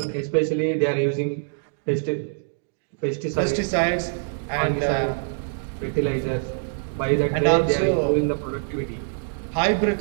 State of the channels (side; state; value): left; silent; digital silence